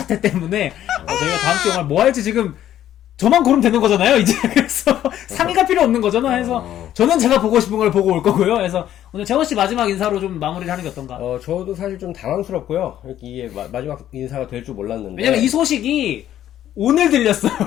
때문에 저희가 다음 주 영화를 뭐 할지 지금 저만 고르면 되는 거잖아요, 이제. 그래서 상의가 필요 없는 거잖아. 해서 저는 제가 보고 싶은 걸 보고 올 거고요. 그래서 오늘 재원 씨 마지막 인사로 좀 마무리를 하는 게 어떤가? 저도 사실 좀 당황스럽고요. 이게 마지막 인사가 될 줄 몰랐는데. 왜냐면 이 소식이 오늘 들렸어요.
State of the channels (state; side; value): quieter; right; 11.7 dB